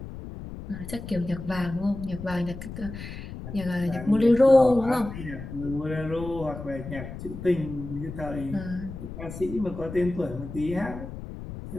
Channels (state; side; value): noise; left; rumble, 10 dB below the sound